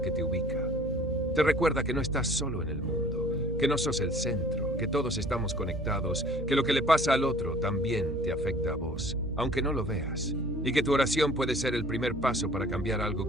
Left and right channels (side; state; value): right; noise; hum, 9 dB below the sound